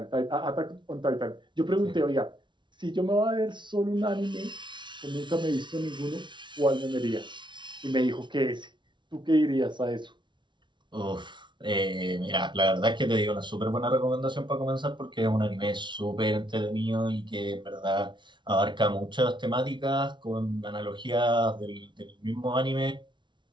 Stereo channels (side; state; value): left; late; 0.23 ms